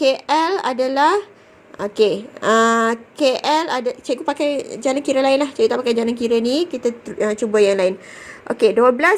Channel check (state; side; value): identical; both; correlation 1.00